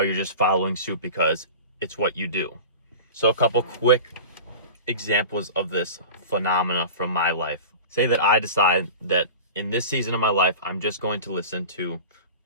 you're just following suit because it's what you do. So a couple quick examples of this phenomena from my life. Say that I decide that in this season of my life, I'm just going to listen to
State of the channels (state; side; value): inverted; both; correlation -0.35